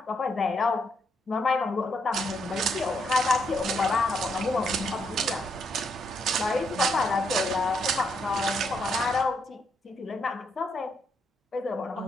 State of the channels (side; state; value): both; normal; correlation 0.76